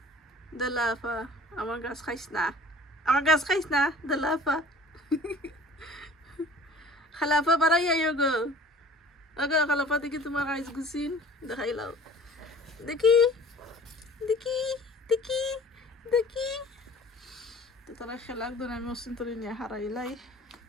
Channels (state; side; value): normal; both; correlation 0.47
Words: দেলাফা আমার গাছ খাইস না দেলাফা খালাফা বাড়াইয়া গো ওকে খালাফা দেখি তোমার গাছ গুছিন দেখাইলাও দেখি দেখি দেখি দেখি তো তারা খেলাক ধরে আমি অসিন তরি নিয়ে হারাইলাই